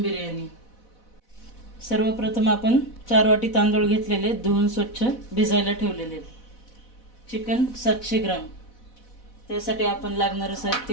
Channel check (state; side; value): late; right; 4.1 ms